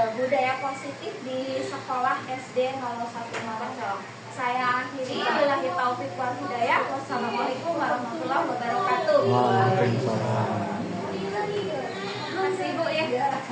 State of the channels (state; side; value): identical; both; correlation 1.00